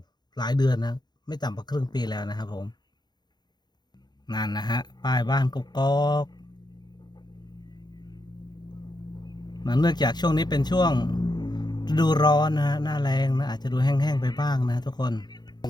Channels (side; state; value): right; late; 0.21 ms